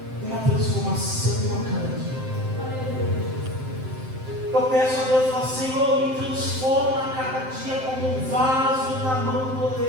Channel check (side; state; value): left; late; 7.7 ms